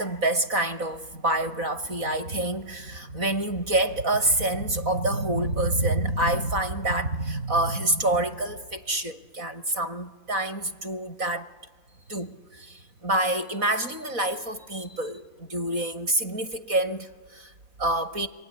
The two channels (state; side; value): late; left; 4.0 ms